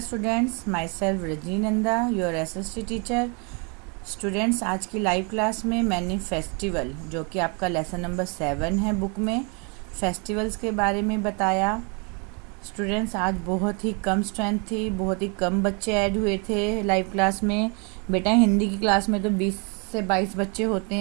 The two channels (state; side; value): quieter; left; 33.9 dB